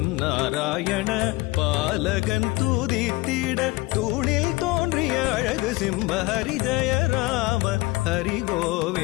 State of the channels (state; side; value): quieter; right; 21.5 dB